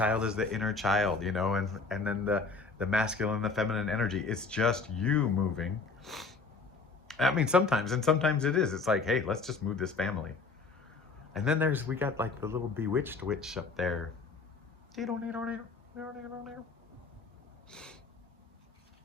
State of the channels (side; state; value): right; quieter; 4.2 dB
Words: is the inner child, you know, and then the masculine and the feminine energy. It's just you moving. I mean, sometimes, and sometimes it is. It's like, hey, let's just move this family. And then we got like the little bewitched witch up there.